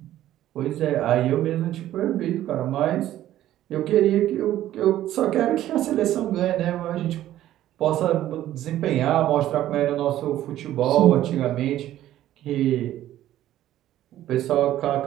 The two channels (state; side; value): quieter; left; 13.2 dB